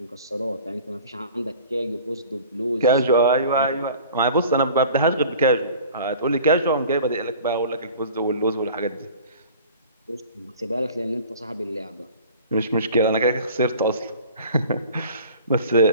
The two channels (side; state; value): both; inverted; correlation -0.44